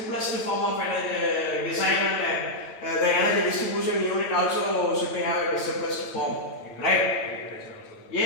form of energy design, and the energy distribution unit also should be have a simplest form, right?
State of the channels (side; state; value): right; late; 9.0 ms